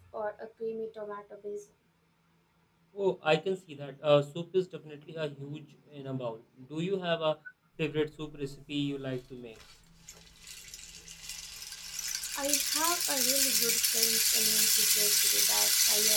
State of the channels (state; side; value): identical; both; correlation 1.00